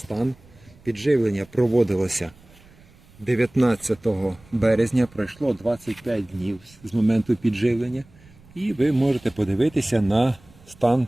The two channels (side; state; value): right; noise; rumble, 26 dB below the sound